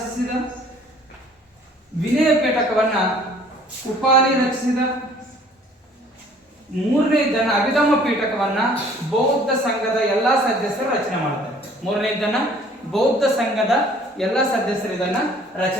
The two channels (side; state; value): both; normal; correlation 0.55